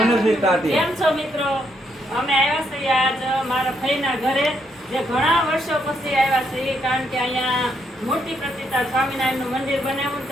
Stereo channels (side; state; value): both; normal; correlation 0.76